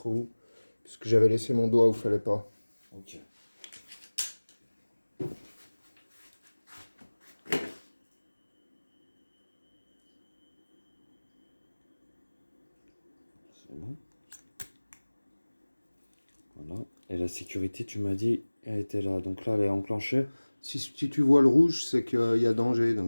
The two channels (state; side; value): inverted; both; correlation -1.00